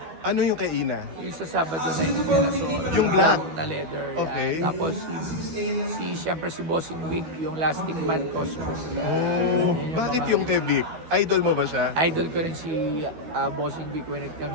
Ano yung kay Ina? Yung sa Sabado na yung yung black na leather. Okay. Yan. Tapos siyempre si Bossing Vic, yung Lasting Man costume. Bakit yung kay Vic? Idol mo ba siya? Idol ko rin si Bossing Vic when it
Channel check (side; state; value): left; late; 12 ms